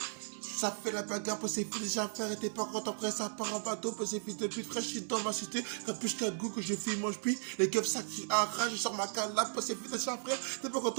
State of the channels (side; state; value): left; silent; 54 dB below the other